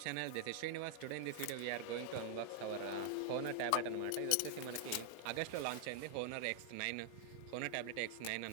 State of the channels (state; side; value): different; both; correlation 0.00